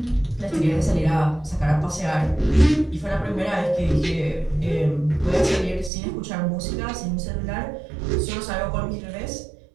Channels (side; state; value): left; drops out; at 5.9 s